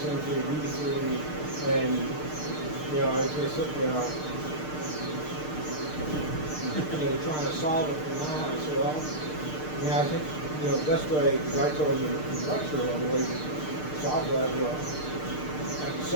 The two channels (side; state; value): right; late; 6.6 ms